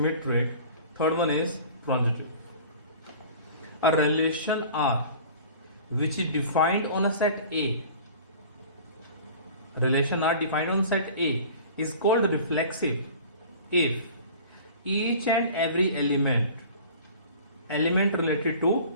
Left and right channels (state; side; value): inverted; both; correlation -0.43